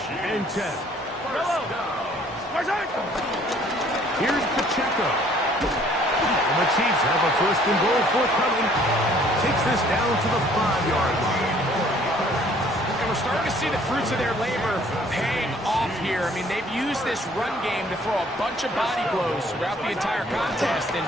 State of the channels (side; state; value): both; normal; correlation 0.58